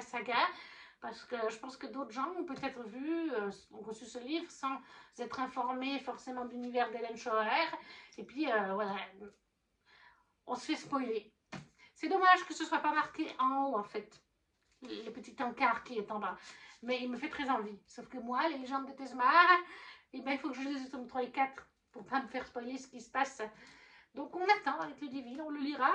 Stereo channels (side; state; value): both; identical; correlation 1.00